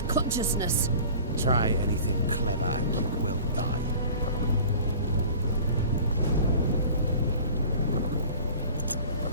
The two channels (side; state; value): both; inverted; correlation -0.43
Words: consciousness. Try anything clever and you will die.